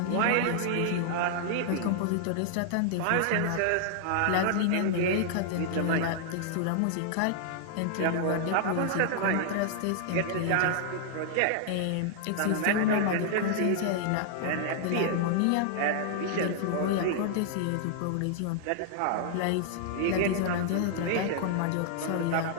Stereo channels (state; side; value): different; both; correlation 0.00